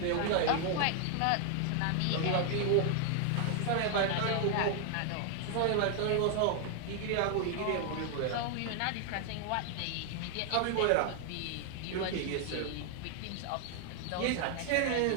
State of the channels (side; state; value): both; different; correlation 0.00